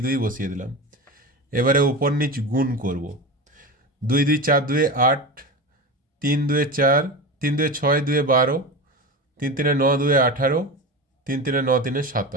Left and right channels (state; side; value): normal; both; correlation 0.25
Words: 2 বসিয়ে দিলাম। এবারে উপর নিচ গুণ করব, 2 2 4 2 8, 3 2 4, 3 2 6 2 12, 3 3 9 2 18, 3 3 9 3